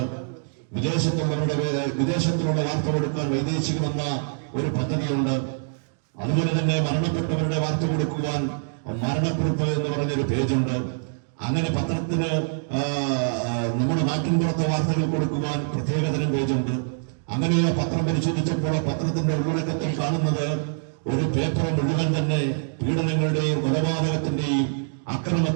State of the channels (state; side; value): silent; left; digital silence